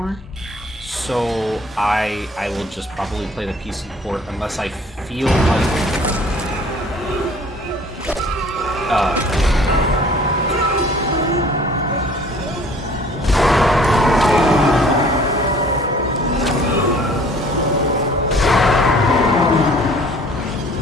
so I will just probably play the PC port unless I feel like...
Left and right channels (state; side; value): normal; both; correlation 0.52